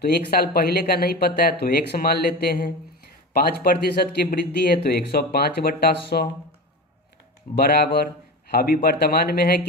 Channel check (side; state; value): both; normal; correlation 0.27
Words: तो 1 साल पहले का नहीं पता है तो x मान लेते हैं। 5% की वृद्धि है तो 105 बट्टा 100 बराबर, अभी वर्तमान में है